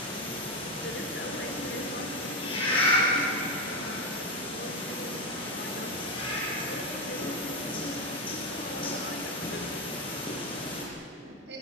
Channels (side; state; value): both; normal; correlation 0.09